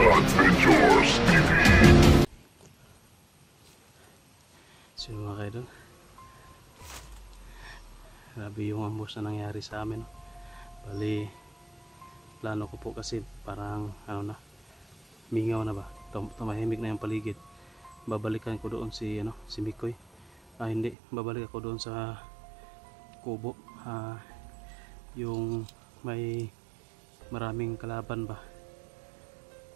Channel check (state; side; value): drops out; left; at 21.0 s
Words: mga kaidol, grabe yung ambos na nangyari sa amin. Bali, plano ko po kasi parang ano na, mingaw na ba, tumahimik na yung paligid. Babalikan ko doon si Mikoy. Hindi, babalik ako doon sa kubo, yung may maraming kalaban ba.